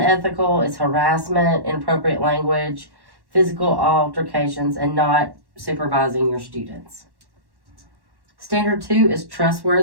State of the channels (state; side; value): late; left; 1.1 ms